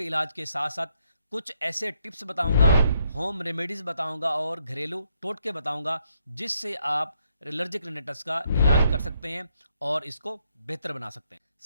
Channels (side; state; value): both; inverted; correlation -0.74